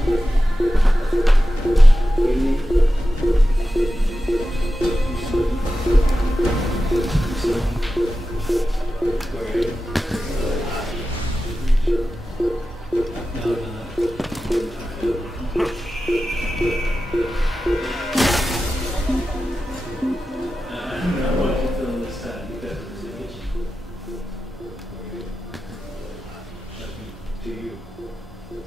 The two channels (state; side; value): normal; both; correlation 0.93